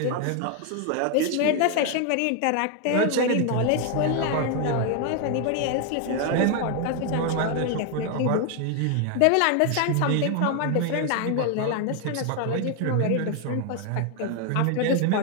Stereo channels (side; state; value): both; different; correlation 0.00